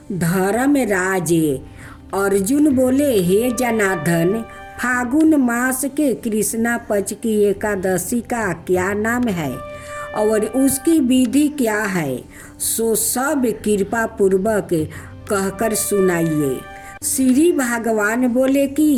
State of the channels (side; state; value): both; identical; correlation 1.00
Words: धर्मराज अर्जुन बोले, हे जनार्दन, फागुन मास के कृष्णा पक्ष की एकादशी का क्या नाम है और उसकी विधि क्या है, सो सब कृपा पूर्वक कहकर सुनाइए। श्री भगवान बोले